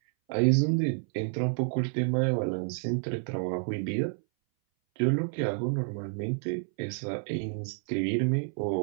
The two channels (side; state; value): left; silent; 58 dB below the other